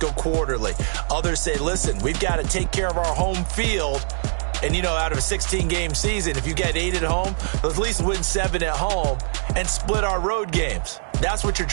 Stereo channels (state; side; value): silent; left; 59 dB below the other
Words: quarterly. Others say, listen, we've got to take care of our home field. And, you know, out of a 16-game season, if you get 8 at home, let's at least win 7 at home and split our road games. That's what you're